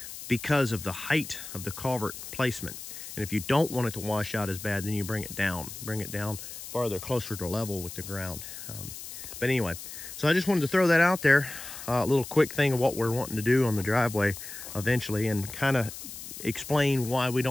because of the height of the culvert placement. And if you don't want it to wash out as bad, then you bring it down farther, closer to level with the ground. But anyway, so I just wanted to throw that out there, a little quick thing of what we're wanting to do on the driveway eventually, and kind of explain why we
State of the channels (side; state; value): left; noise; hiss, 11 dB below the sound